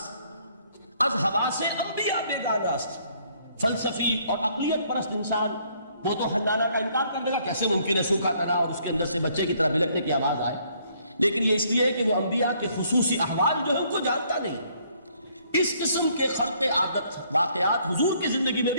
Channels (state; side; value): inverted; both; correlation -0.65